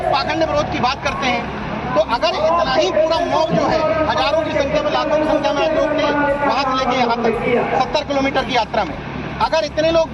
पाखंड विरोध की बात करते हैं, तो अगर इतना ही पूरा मॉब जो है, हजारों की संख्या में, लाखों की संख्या में लोग थे वहां से लेके यहाँ तक 70 किलोमीटर की यात्रा में, अगर इतने लोग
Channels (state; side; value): identical; both; correlation 1.00